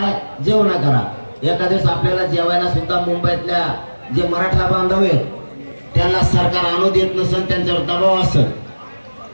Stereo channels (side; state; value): both; inverted; correlation -1.00